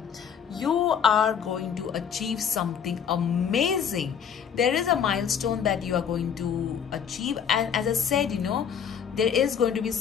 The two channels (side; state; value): right; quieter; 7.7 dB